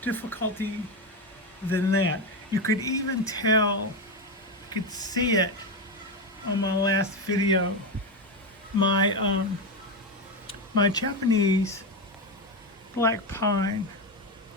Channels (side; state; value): both; normal; correlation 0.13